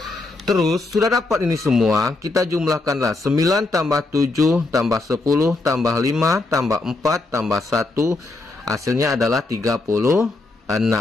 Terus sudah dapat ini semua, kita jumlahkanlah 9 tambah 7 tambah 10 tambah 5 tambah 4 tambah 1, hasilnya adalah 36.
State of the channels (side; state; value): right; quieter; 3.2 dB